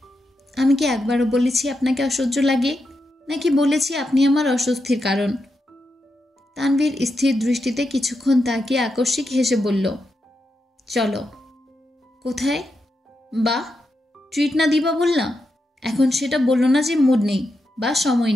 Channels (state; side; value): normal; both; correlation 0.86